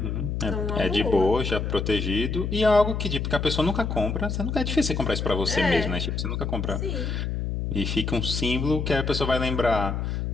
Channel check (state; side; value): noise; left; hum, 2 dB below the sound